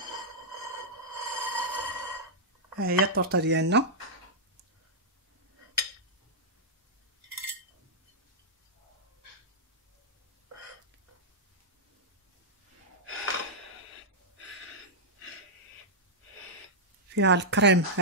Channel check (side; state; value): both; normal; correlation -0.08